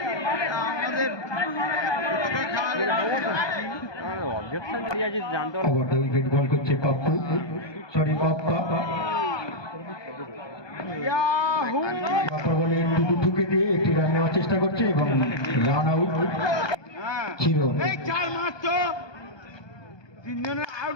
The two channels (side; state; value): right; late; 1.2 ms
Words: ওভারটা উইকেট বল করছে পাপ্পু, সরি পাপ্পা। পাপ্পা বলে টিটু ঠুকে দিয়ে একটি রান নেওয়ার চেষ্টা করছে এবং রান আউট ছিল।